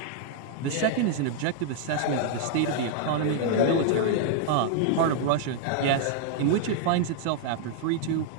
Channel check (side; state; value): both; different; correlation -0.01